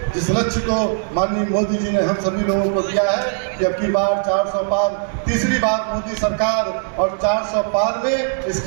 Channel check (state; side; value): silent; left; digital silence